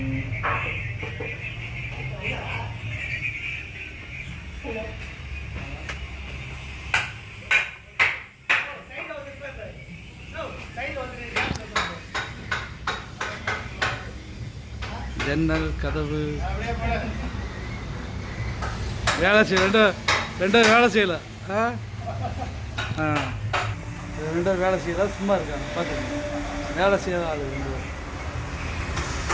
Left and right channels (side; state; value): both; identical; correlation 1.00